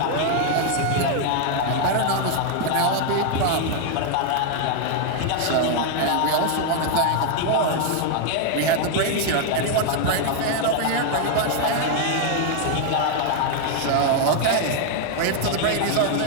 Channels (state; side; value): different; both; correlation 0.00